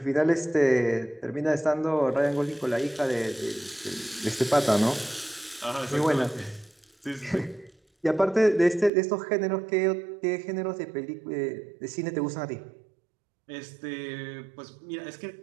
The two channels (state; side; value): drops out; left; at 8.9 s